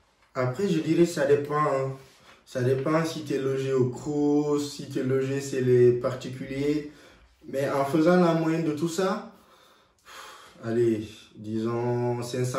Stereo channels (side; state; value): both; identical; correlation 1.00